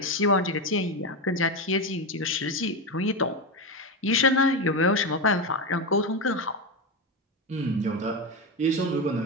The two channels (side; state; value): both; normal; correlation 0.14